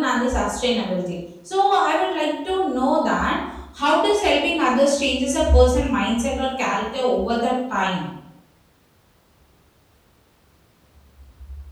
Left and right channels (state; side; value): identical; both; correlation 1.00